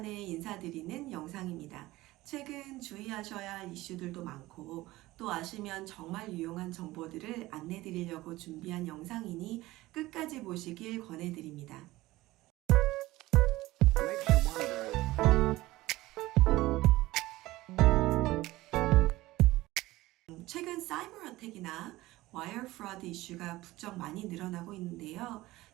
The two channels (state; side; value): quieter; left; 18.3 dB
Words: 인사드리는 영상입니다. 최근 주의하셔야 할 이슈들도 많고 또 아시면 정말 유용한 정보들을 안내드리려고 준비한 영상이니 끝까지 보시길 권해드립니다. 최근 사이버 어택이나 와이어 프로드 이슈가 부쩍 많이 늘어나고 있는데요.